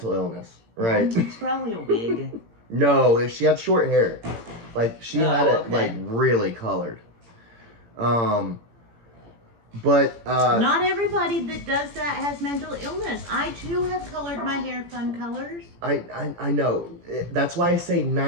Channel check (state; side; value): late; left; 17 ms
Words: illness, right? It's probably a wig. No, she had short hair. Like she had it okay. like really colored. But not everybody that does that has mental illness. I too have colored my hair fun colors. I know. That's why I say